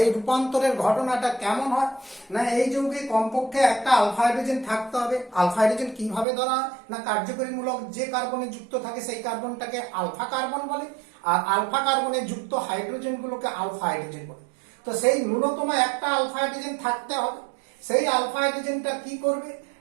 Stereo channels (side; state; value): left; drops out; at 6.2 s